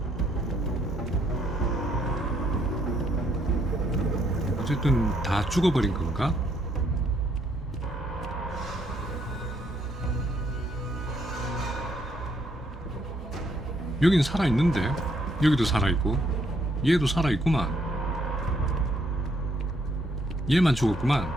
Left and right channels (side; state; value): both; normal; correlation 0.71